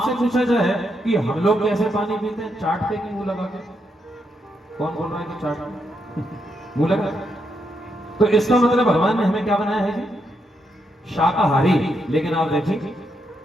पूछा जाए कि हम लोग कैसे पानी पीते हैं, चाट के कि मुंह लगा के? कौन बोल रहा है कि चाट मुंह लगा? तो इसका मतलब भगवान ने हमें क्या बनाया है जी? शाकाहारी। लेकिन आप देखिए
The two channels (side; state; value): both; normal; correlation 0.80